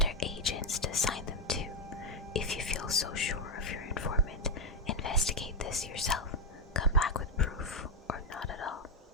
agents to assign them to. If you feel so sure of your informant, investigate this yourself. Come back with proof, or not at all.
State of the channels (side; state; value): both; normal; correlation 0.04